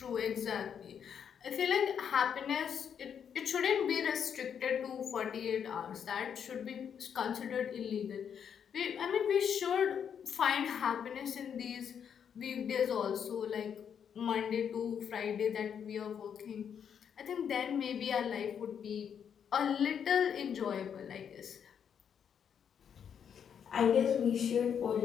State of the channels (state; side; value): quieter; right; 7.9 dB